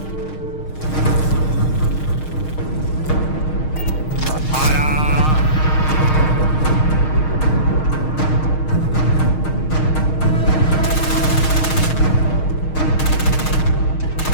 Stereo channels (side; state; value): right; late; 6.5 ms